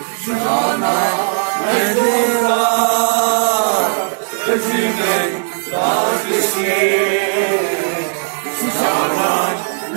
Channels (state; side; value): silent; left; 59 dB below the other